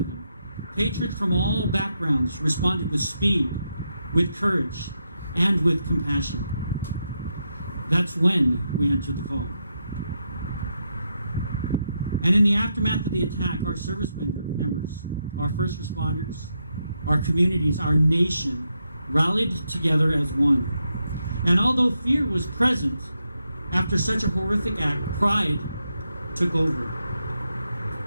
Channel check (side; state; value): both; inverted; correlation -0.83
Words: Patriots from all backgrounds responded with speed, with courage, and with compassion. That's when we answered the call. And in the aftermath of the attack, our service members, our first responders, our communities, our nation rallied together as one. And although fear was present after such a horrific act, pride took over.